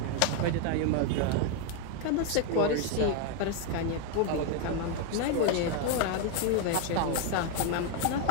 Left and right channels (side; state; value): both; different; correlation 0.01